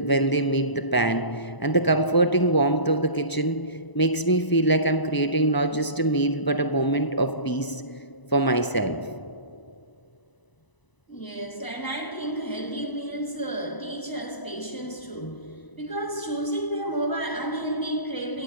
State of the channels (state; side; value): late; right; 1.0 ms